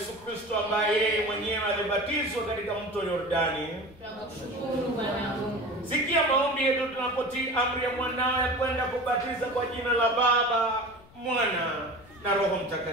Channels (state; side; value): noise; left; rumble, 24 dB below the sound